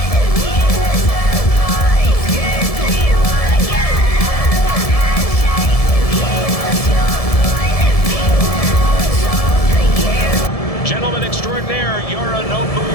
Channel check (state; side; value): late; right; 1.7 ms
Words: Gentleman extraordinaire, Yorinobu